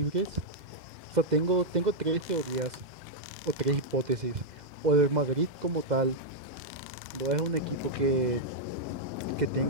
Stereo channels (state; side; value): late; left; 2.1 ms